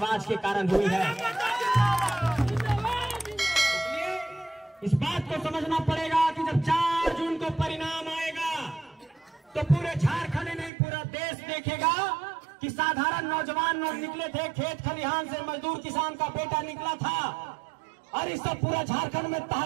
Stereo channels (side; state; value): left; drops out; at 10.7 s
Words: के कारण हुई है। इस बात को समझना पड़ेगा कि जब 4 जून को परिणाम आएगा तो पूरे झारखंड नहीं पूरा देश देखेगा कि साधारण नौजवान लोग निकले थे, खेत खलिहान से मजदूर किसान का बेटा निकला था और इस सब पूरा झारखंड में